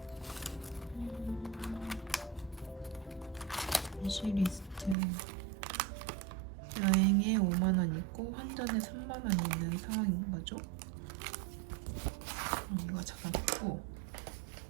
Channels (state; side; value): drops out; left; at 5.0 s